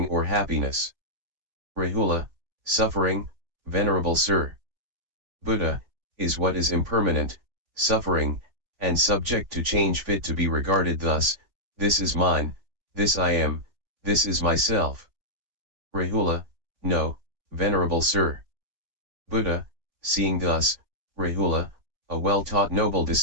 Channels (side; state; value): left; late; 3.4 ms